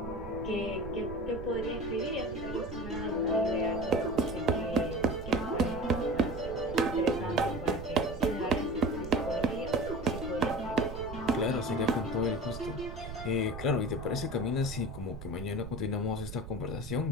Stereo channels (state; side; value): noise; right; rumble, 10 dB below the sound